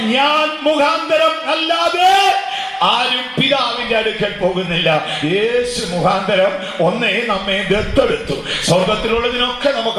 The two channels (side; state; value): both; identical; correlation 1.00